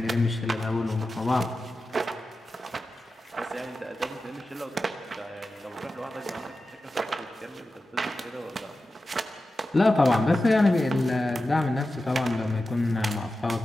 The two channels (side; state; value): both; normal; correlation 0.93